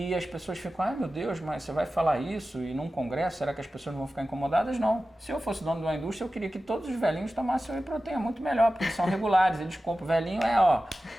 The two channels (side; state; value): both; normal; correlation 0.95